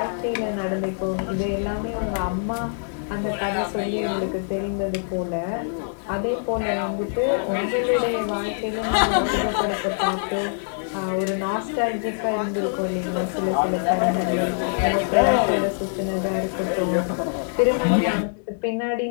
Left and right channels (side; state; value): right; silent; digital silence